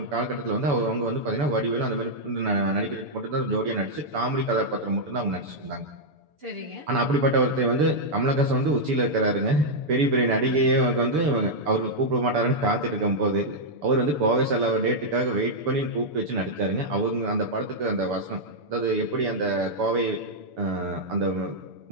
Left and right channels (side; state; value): left; late; 6.9 ms